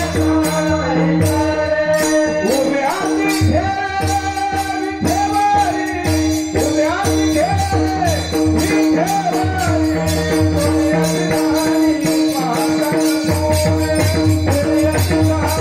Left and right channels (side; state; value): both; identical; correlation 1.00